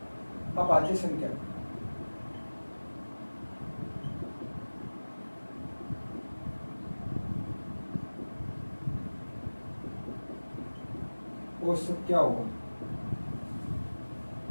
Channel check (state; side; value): inverted; both; correlation -1.00